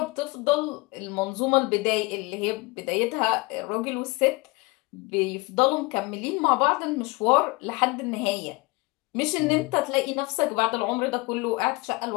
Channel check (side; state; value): right; quieter; 24.0 dB